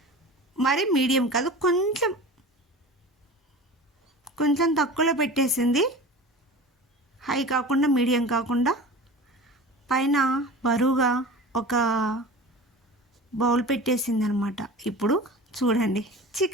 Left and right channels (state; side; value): normal; both; correlation 0.35